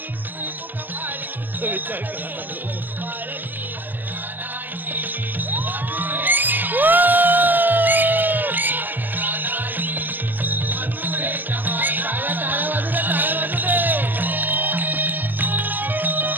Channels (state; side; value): late; left; 0.091 ms